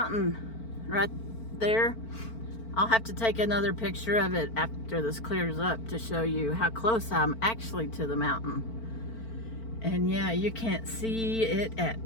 right there. I'll have to take another picture of it after this clears up to show you how close I'm actually to the mountain. And yeah, you can't see it at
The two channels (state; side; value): late; right; 4.4 ms